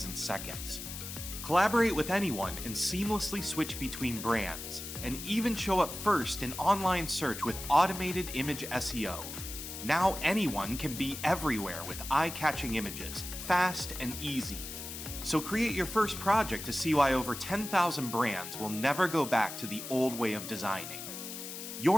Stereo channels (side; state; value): left; noise; hiss, 9 dB below the sound